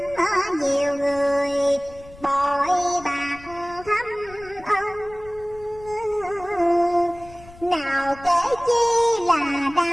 nhiều người bội bạc thâm ân. Nào kể chi là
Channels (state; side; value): noise; left; rumble, 21 dB below the sound